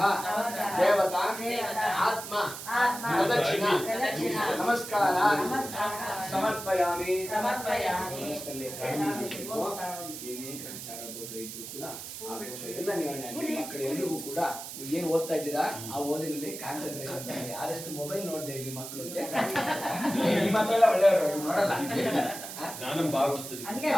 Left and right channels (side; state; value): right; noise; hiss, 10 dB below the sound